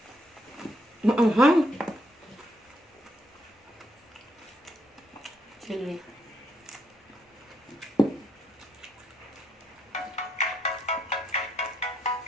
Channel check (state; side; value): normal; both; correlation 0.74